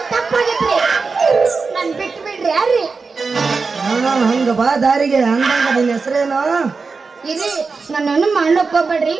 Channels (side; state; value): left; quieter; 4.5 dB